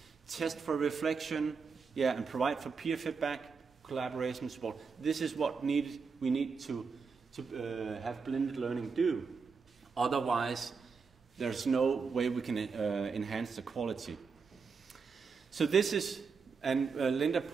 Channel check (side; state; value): left; quieter; 5.2 dB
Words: Test for reflection, yeah, and provide for peer feedback, collaboration support. This is what we need to have blended learning do. Otherwise, there's no way we can enhance the quality. So this is, and Linda